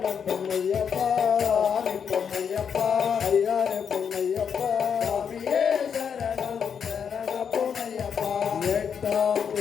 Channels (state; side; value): quieter; right; 7.2 dB